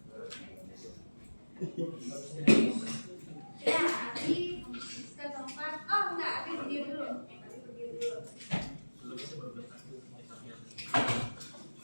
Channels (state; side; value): inverted; both; correlation -1.00